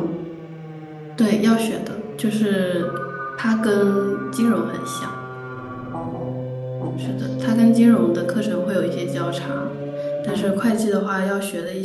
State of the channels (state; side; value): identical; both; correlation 1.00